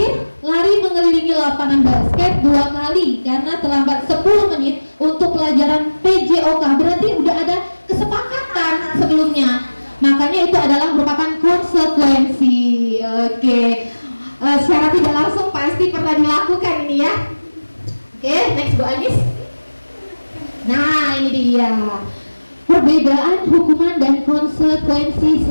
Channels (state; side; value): inverted; both; correlation -1.00